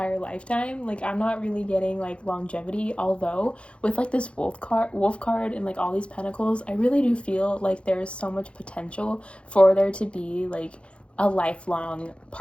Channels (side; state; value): right; late; 0.059 ms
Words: lifetime. Like, I'm not really getting, like, longevity, although with, like, this wolf card and, like, all these pentacles, I really do feel like there's so much potential for there to be, like, a lifelong